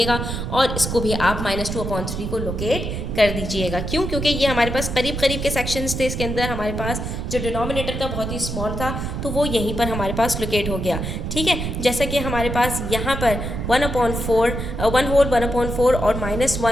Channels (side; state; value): right; noise; rumble, 4 dB below the sound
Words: और इसको भी आप -2/3 को लोकेट कर दीजिएगा। क्यों, क्योंकि ये हमारे पास करीब करीब के सेक्शंस थे, इसके अंदर हमारे पास जो डिनोमिनेटर था बहुत ही स्मॉल था तो वो यहीं पर हमारे पास लोकेट हो गया। ठीक है, जैसा कि हमारे पास यहाँ पर 1/4, 1 होल 1/4 और